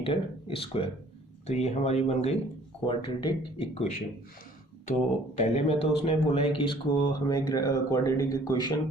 square. तो ये हमारी बन गई क्वाड्रेटिक इक्वेशन। तो पहले में तो उसने बोला है कि इसको हमें क्वाड्रेटिक इक्वेशन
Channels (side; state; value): both; normal; correlation 0.55